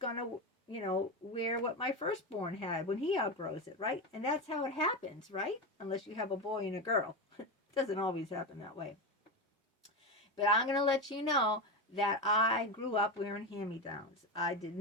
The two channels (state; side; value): normal; both; correlation 0.15